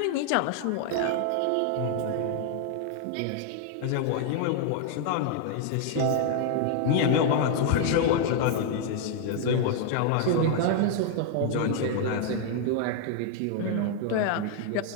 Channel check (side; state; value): both; different; correlation 0.00